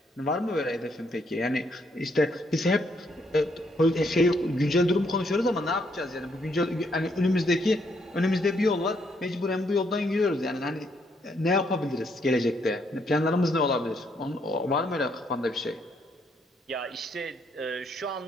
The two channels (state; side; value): normal; both; correlation 0.73